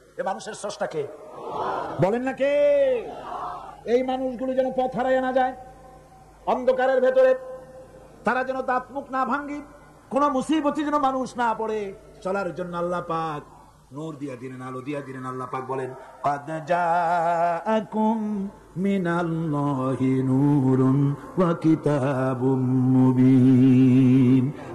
এই মানুষের স্রষ্টা কে বলেন না কে? এই মানুষগুলো যেন পথ হারায় না যায়, অন্ধকারের ভেতরে তারা যেন দাঁত মুখ না ভাঙ্গি, কোন মুসিবতে যেন মানুষ না পড়ে, চলার জন্য আল্লাহ পাক নূর দিয়া দিলেন, আলো দিয়া দিলেন। আল্লাহ পাক বলেন, قد جاءكم من الله نور وكتاب مبين।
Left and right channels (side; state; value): both; identical; correlation 1.00